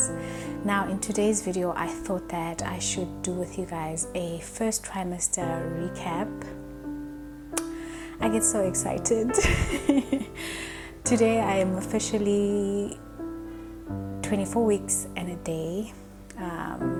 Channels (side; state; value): both; identical; correlation 1.00